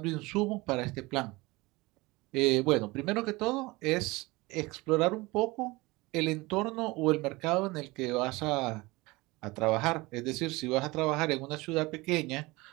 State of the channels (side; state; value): left; quieter; 22.4 dB